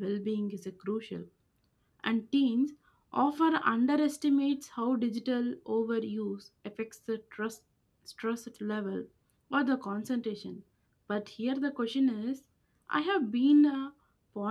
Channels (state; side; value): identical; both; correlation 1.00